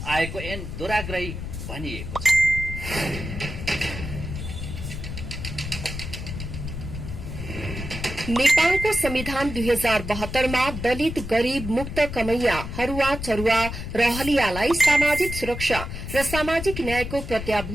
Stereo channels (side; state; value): left; noise; rumble, 7 dB below the sound